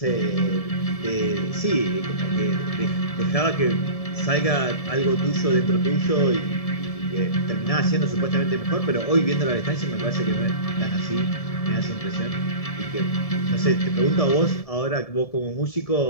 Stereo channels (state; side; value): late; right; 1.7 ms